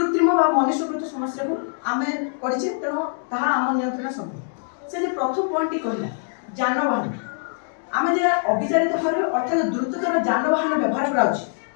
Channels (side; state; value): right; silent; digital silence